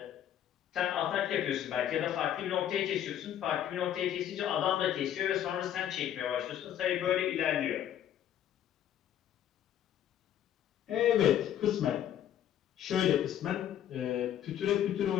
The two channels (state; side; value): quieter; right; 10.6 dB